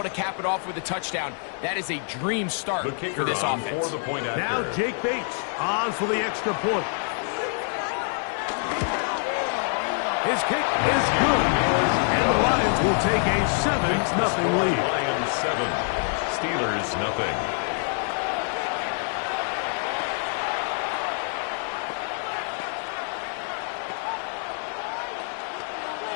to cap it off with a touchdown, that is a dream start for this offense. Now Jake Bates on for the extra point. His kick is good. And the Lions will take a 7-0 lead. Lions 7, Steelers nothing.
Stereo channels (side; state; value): right; silent; 55 dB below the other